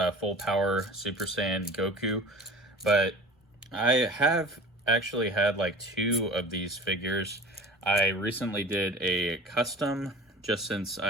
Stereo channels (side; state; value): both; normal; correlation 0.40